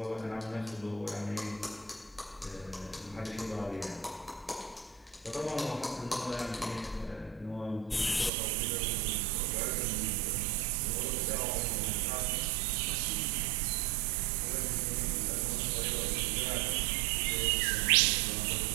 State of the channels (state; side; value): drops out; left; at 8.3 s